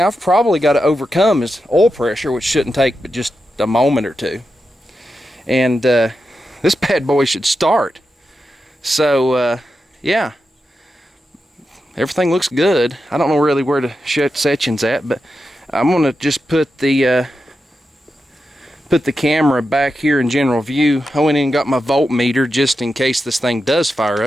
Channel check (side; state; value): both; normal; correlation 0.89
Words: I've probably got to overcome is oil pressure, which shouldn't take but just a moment or two. And this bad boy should start. So yeah, everything looks good. I don't know really where the section's at, but I'm gonna just put the camera back here in general view. I went in and got my voltmeter just in case this thing does fire